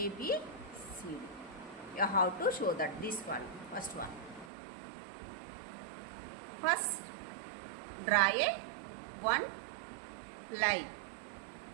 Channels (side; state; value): left; drops out; at 4.5 s